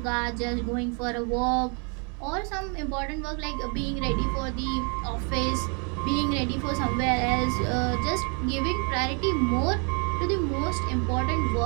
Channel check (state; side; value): quieter; left; 37.0 dB